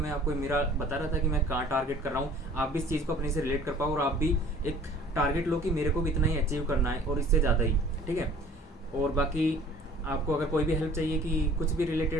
आपको मेरा बता रहा था कि मैं कहाँ टारगेट कर रहा हूँ, आप भी इस चीज़ को अपने से रिलेट कर पाओ और आप भी एक टारगेट लो कि मेरे को भी इतना ही अचीव करना है और इससे ज़्यादा ही, ठीक है। और बाकी आपको अगर कोई भी हेल्प चाहिए कि कुछ भी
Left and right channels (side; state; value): both; normal; correlation 0.51